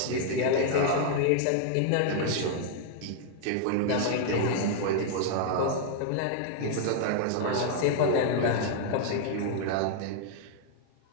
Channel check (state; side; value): different; both; correlation 0.00